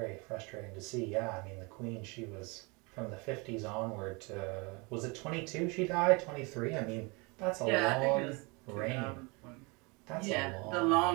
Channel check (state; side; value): quieter; left; 28.7 dB